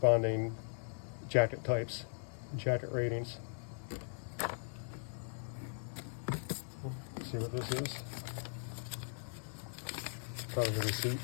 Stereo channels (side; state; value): right; silent; digital silence